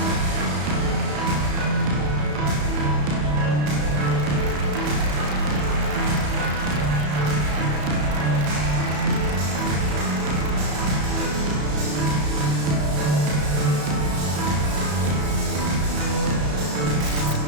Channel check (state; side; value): late; left; 34 ms